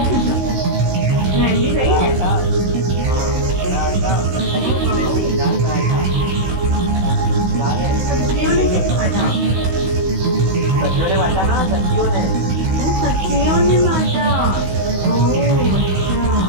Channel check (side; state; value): left; late; 16 ms